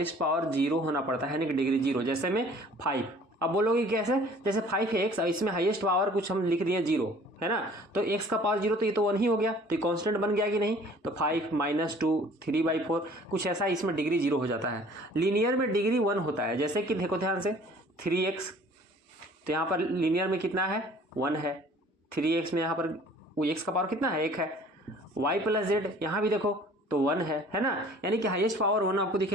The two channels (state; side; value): normal; both; correlation 0.52